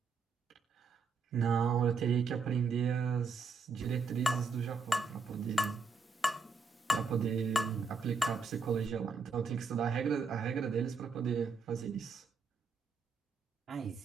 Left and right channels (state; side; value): quieter; left; 4.8 dB